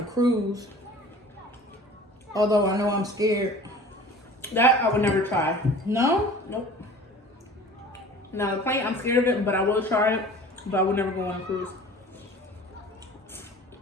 cruise. Although I know I'm scared. That I would never try. No? Nope. Now the plane, I'm scared of it, but I will try it. But I would never go on a cruise.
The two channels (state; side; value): normal; both; correlation 0.43